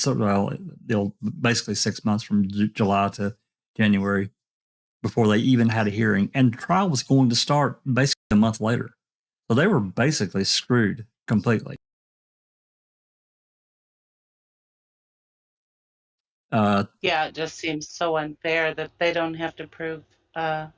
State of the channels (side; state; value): both; identical; correlation 1.00